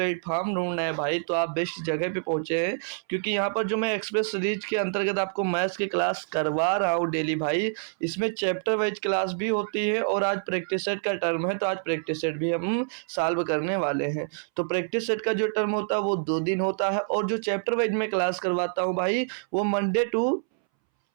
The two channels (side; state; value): left; silent; 60 dB below the other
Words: ढूंढना है भाई, तो आप बेस्ट जगह पे पहुंचे हैं। क्योंकि यहाँ पर जो मैं एक्सप्रेस सीरीज के अंतर्गत आपको मैथ्स की क्लास करवा रहा हूँ डेली भाई, इसमें चैप्टर वाइज क्लास भी होती है और आज प्रैक्टिस सेट का टर्म है, तो आज प्रैक्टिस सेट भी हम सॉल्व करने वाले हैं। तो प्रैक्टिस सेट का जो टर्म होता है वो 2 दिन होता है, और जो चैप्टर वाइज मैं क्लास करवाता हूँ भाई, वो मंडे टू